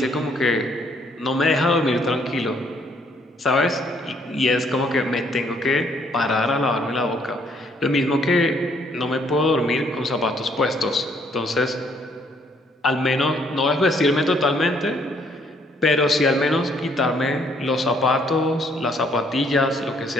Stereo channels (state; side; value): normal; both; correlation 0.66